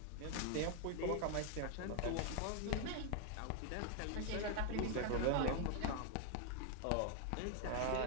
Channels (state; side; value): different; both; correlation 0.00